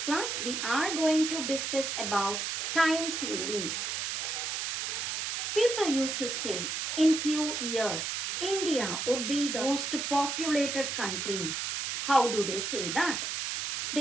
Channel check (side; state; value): right; noise; hiss, 2 dB below the sound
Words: we are going to discuss about time series. People used to say in few years India would be the most populated country. How do they say that?